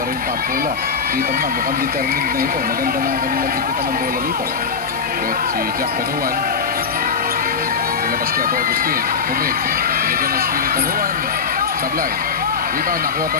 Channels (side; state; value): right; quieter; 5.7 dB